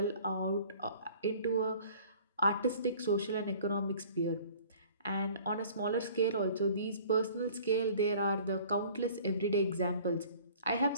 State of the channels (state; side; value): inverted; both; correlation -0.50